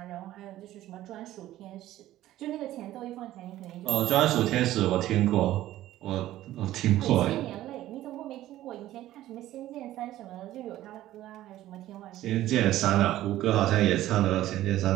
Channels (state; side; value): quieter; left; 14.4 dB